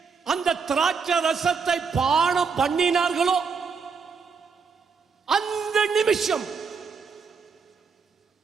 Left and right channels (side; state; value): left; quieter; 5.4 dB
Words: அந்த திராட்சை ரசத்தை பானம் பண்ணினார்களோ அந்த நிமிஷம்